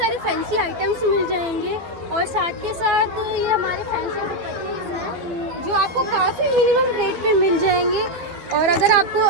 फैंसी आइटम्स मिल जाएंगे। और साथ के साथ ये हमारे फैंसी पैकेट्स हैं जो आपको काफ़ी मिनिमम रेट पे मिल जाएंगे। और अगर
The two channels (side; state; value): left; late; 12 ms